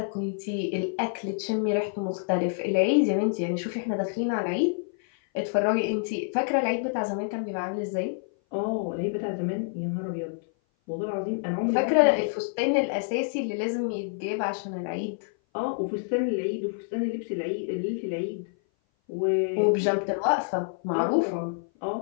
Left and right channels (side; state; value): right; silent; 57 dB below the other